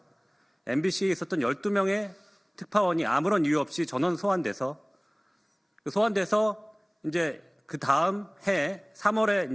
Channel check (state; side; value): identical; both; correlation 1.00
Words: MBC에 있었던 12명의 특파원이 아무런 이유 없이 전원 소환돼서 이제 그 다음 해 3월에